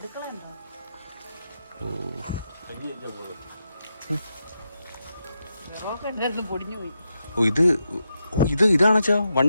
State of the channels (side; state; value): both; inverted; correlation -0.85